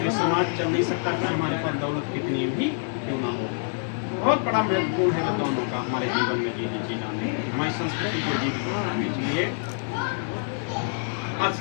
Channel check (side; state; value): right; silent; digital silence